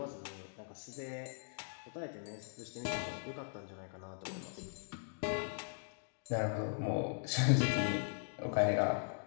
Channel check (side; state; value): right; silent; digital silence